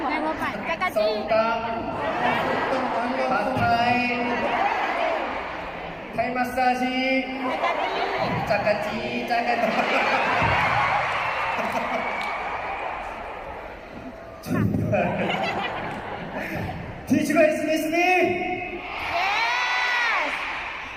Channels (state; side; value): identical; both; correlation 1.00